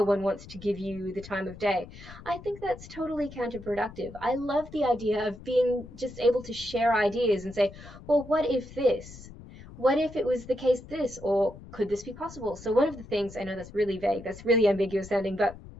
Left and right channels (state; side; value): noise; left; rumble, 16 dB below the sound